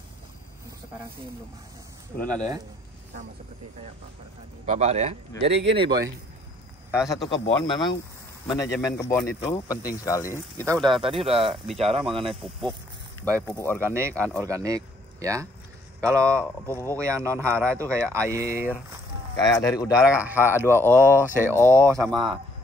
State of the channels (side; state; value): both; normal; correlation 0.64